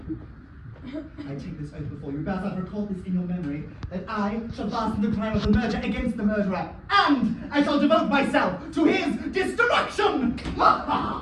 I take this oath before you, Bassard, record this in your memory, that I shall fasten the crime of the murder against the murderer, and I shall devote myself to his destruction!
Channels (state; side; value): identical; both; correlation 1.00